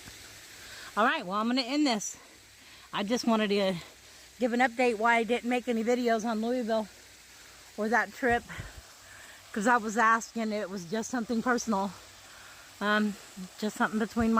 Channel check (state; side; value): identical; both; correlation 1.00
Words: All right, well, I'm going to end this. I just wanted to give an update why I didn't make any videos on Louisville or that trip, because I was asking. It was just something personal, just something between